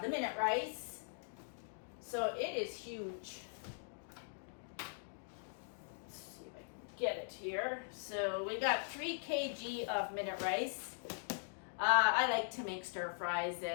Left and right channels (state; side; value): silent; right; digital silence